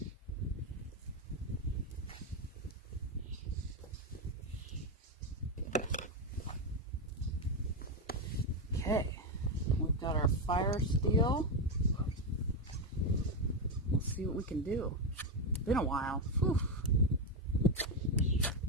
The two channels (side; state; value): both; normal; correlation 0.09